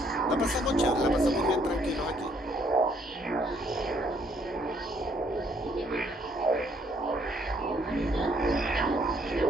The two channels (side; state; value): both; normal; correlation 0.67